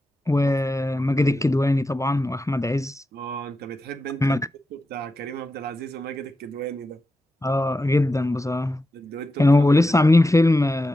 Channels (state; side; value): normal; both; correlation 0.89